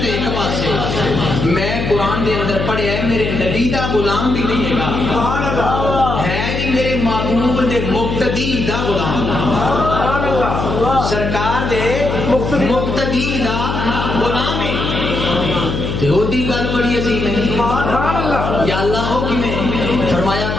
تے ایک پاسے، غلام بھی نہیں ہے جی میرے محبوب دے مقتدی دا غلام سرکار دے مقتدی دا غلام ہے تے او دی گل بڑی عظیم ہے یا اللہ ہو کہ میں فرمایا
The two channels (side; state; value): left; noise; hum, 3 dB below the sound